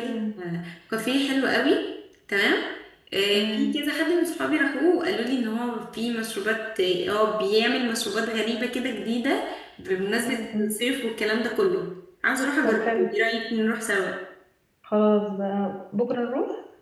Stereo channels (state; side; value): identical; both; correlation 1.00